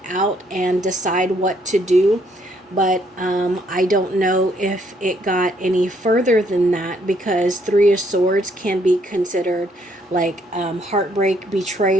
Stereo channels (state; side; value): normal; both; correlation 0.69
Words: out and decide what to do. But I don't know if it got any further than that, because 3 of Swords can be considered like heartbreak,